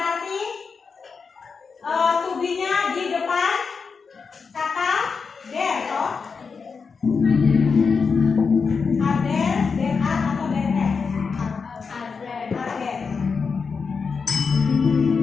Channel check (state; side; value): quieter; right; 5.3 dB